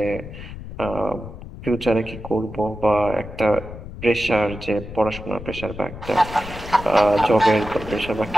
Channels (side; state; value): left; noise; rumble, 12 dB below the sound